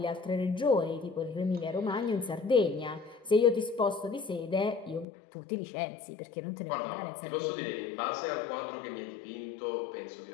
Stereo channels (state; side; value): drops out; right; at 5.1 s